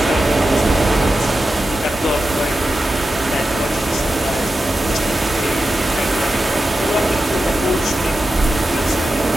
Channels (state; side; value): normal; both; correlation 0.91